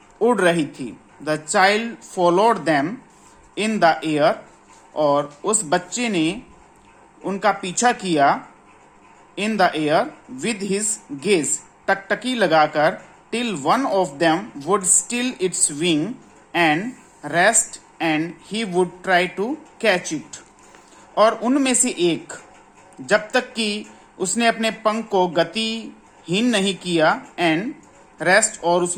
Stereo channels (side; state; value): both; identical; correlation 1.00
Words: उड़ रही थी। The child followed them in the air, और उस बच्चे ने उनका पीछा किया in the air with his gaze, टकटकी लगाकर, till one of them would still its wing and rest and he would try to catch it, और उनमें से एक, जब तक कि उसने अपने पंख को गतिहीन नहीं किया, एंड रेस्ट, और